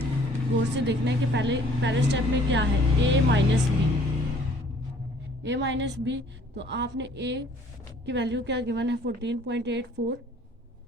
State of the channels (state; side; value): normal; both; correlation 0.56